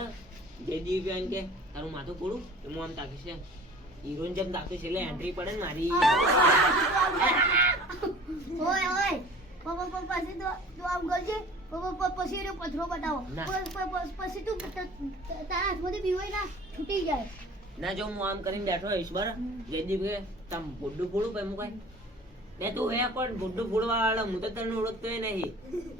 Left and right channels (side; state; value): both; normal; correlation 0.45